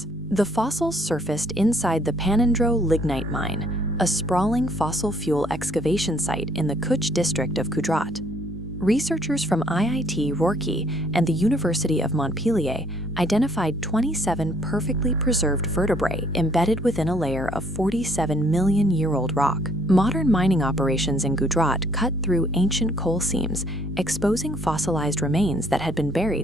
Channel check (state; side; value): normal; both; correlation 0.63